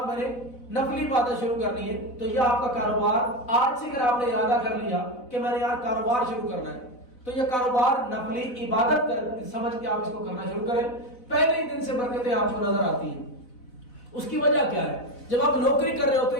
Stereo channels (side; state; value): right; late; 4.0 ms